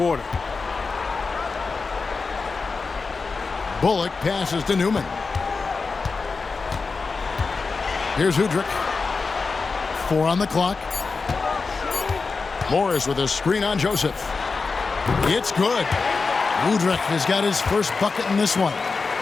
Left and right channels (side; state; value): right; quieter; 4.4 dB